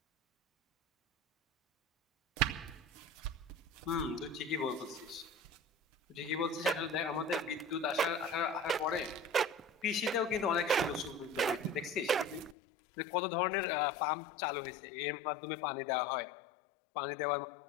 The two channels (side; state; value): right; drops out; at 12.6 s